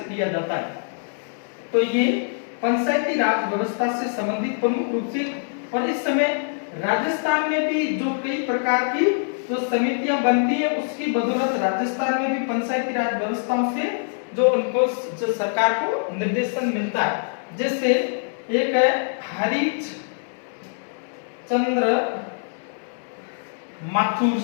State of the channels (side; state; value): right; silent; digital silence